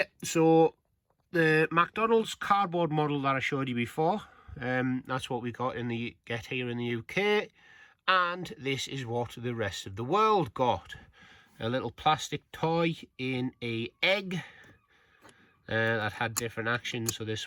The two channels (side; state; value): both; identical; correlation 1.00